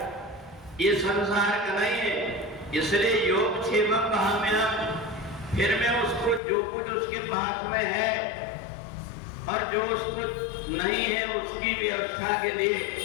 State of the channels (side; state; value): right; drops out; at 6.4 s